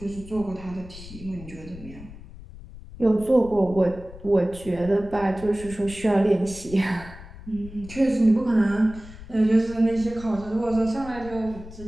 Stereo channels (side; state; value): left; noise; rumble, 16 dB below the sound